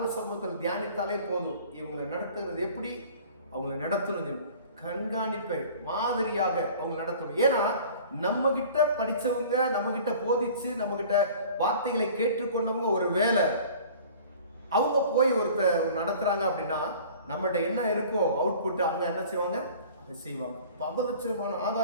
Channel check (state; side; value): inverted; both; correlation -0.46